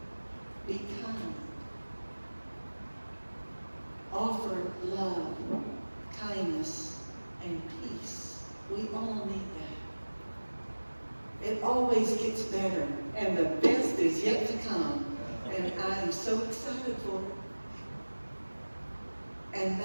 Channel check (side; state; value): both; inverted; correlation -1.00